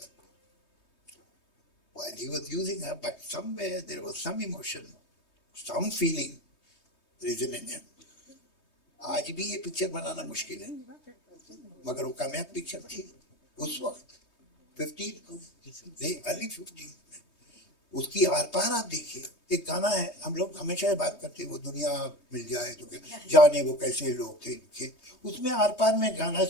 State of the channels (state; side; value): late; right; 3.2 ms